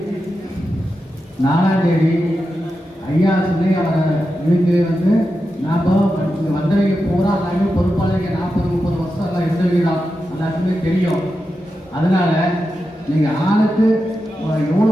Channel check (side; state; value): both; normal; correlation 0.89